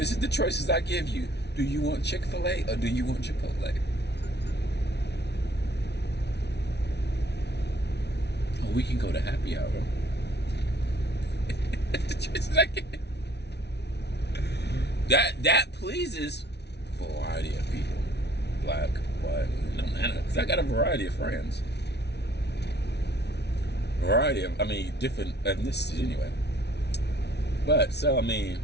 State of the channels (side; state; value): right; late; 0.49 ms